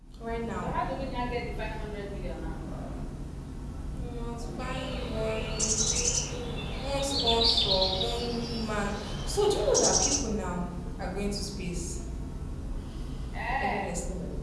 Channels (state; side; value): identical; both; correlation 1.00